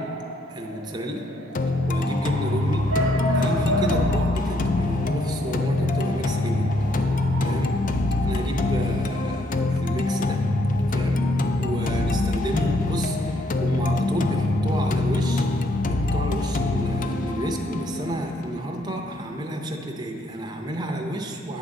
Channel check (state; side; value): normal; both; correlation 0.71